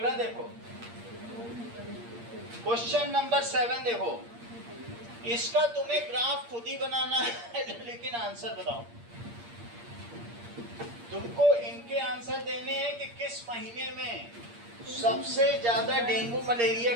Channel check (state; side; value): late; left; 8.6 ms